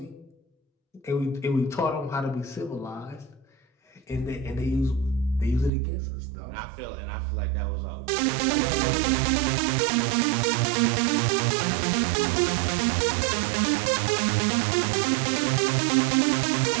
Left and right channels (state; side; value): drops out; left; at 5.7 s